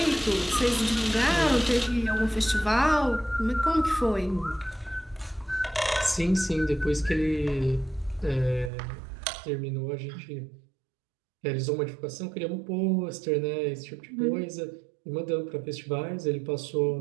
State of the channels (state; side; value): drops out; left; at 8.7 s